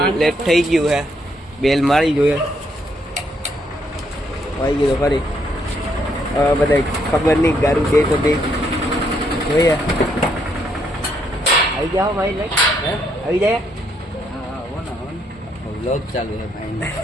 લેટ થઈ ગયું છે. બેલ મારી જોઈએ આવી ગયો ફરી. બધા ખબર નહીં ગારું દે તો દે જોઈએ. આવી જાઓ ભાઈ, આવી જાય. વ્લોગ ચાલુ છે ભાઈ.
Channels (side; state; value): both; normal; correlation 0.73